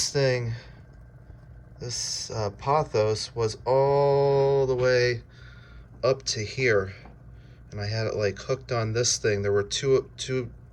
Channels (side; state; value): both; identical; correlation 1.00